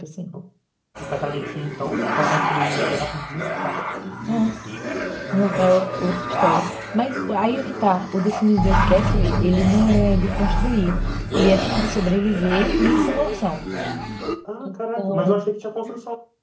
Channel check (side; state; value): both; identical; correlation 1.00